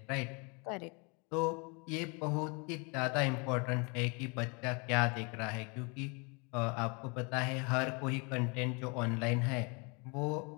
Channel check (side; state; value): right; quieter; 31.5 dB